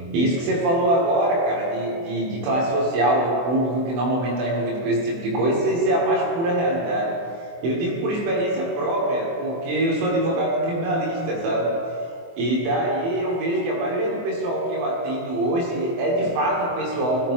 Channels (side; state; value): left; late; 24 ms